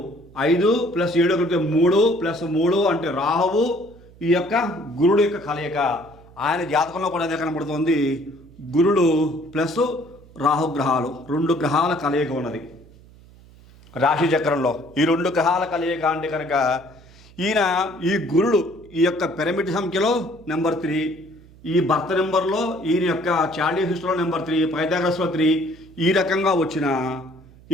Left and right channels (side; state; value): right; noise; hum, 24 dB below the sound